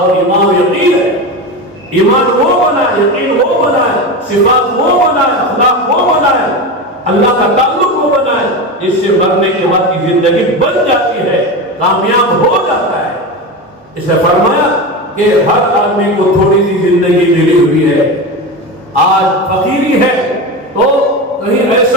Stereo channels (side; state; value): both; normal; correlation 0.22